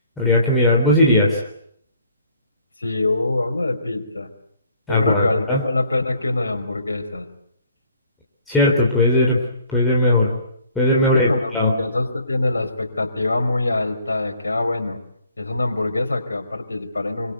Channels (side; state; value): both; inverted; correlation -0.58